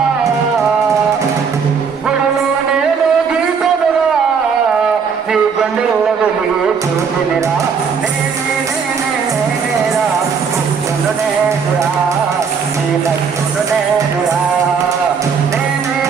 గుడిలో నేను గీతలురా నీ గుండెల్లో వెలిగి చూసినిరా నేనేరా ఉప్పును నేనురా నీ లక్కును నేనురా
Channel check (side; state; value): left; quieter; 6.1 dB